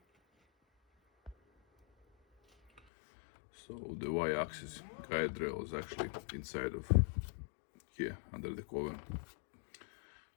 So the Y-axis guide rail is actually inside of here under the cover.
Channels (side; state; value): right; drops out; at 2.8 s